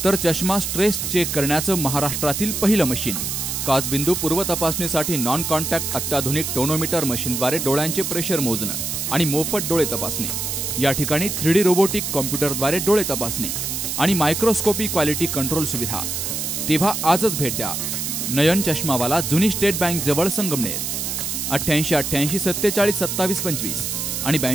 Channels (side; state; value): right; noise; hiss, 3 dB below the sound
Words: तर चष्मा स्ट्रेस चेक करण्याचं महाराष्ट्रातील पहिलं मशीन। काचबिंदू पूर्व तपासणीसाठी नॉन कॉन्टॅक्ट अत्याधुनिक टोनोमीटर मशीनद्वारे डोळ्यांचे प्रेशर मोजणं आणि मोफत डोळे तपासणी। या ठिकाणी 3D रोबोटिक कॉम्प्युटरद्वारे डोळे तपासणी आणि मायक्रोस्कोपी क्वालिटी कंट्रोल सुविधा। तेव्हा आजच भेट द्या नयन चष्मावाला, जुनी स्टेट बँक जवळ, संगमनेर। 88 88 47 27 25 आणि